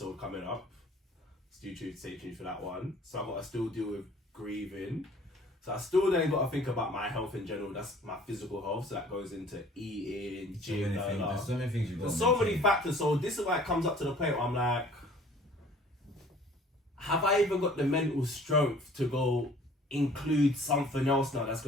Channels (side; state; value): both; normal; correlation 0.52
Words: coming up. Stay tuned for that one. So I've got to still deal with grieving. So I still then got to think about my health in general. That's my physical health. So that goes into eating, gym, There's so many things you've got. There's so many factors. So this is why it comes up to the point where I'm like, have I even got the mental strength to go include something else now that's